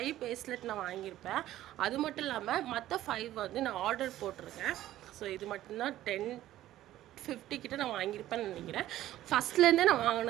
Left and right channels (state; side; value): quieter; left; 14.0 dB